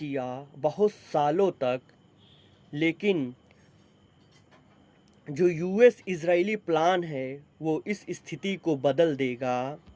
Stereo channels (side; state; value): both; identical; correlation 1.00